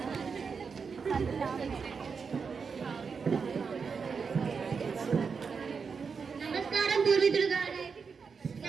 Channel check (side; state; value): left; quieter; 5.6 dB